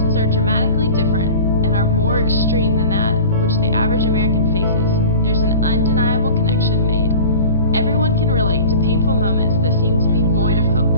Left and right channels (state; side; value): inverted; both; correlation -0.39